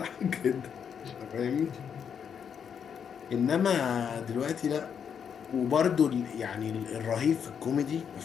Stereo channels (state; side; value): quieter; right; 7.5 dB